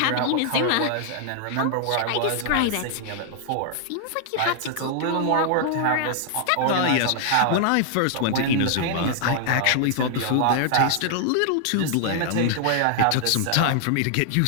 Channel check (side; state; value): both; different; correlation 0.00